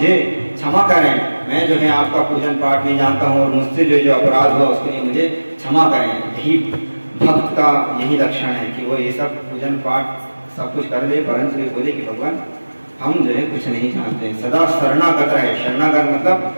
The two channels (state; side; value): inverted; both; correlation -1.00